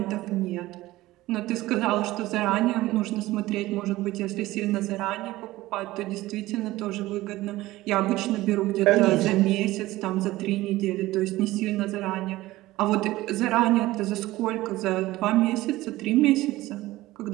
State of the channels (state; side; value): quieter; left; 17.5 dB